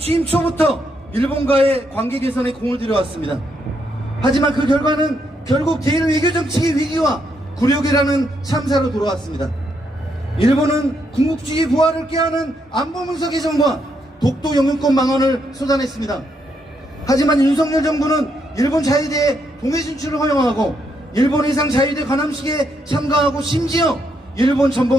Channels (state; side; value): normal; both; correlation 0.77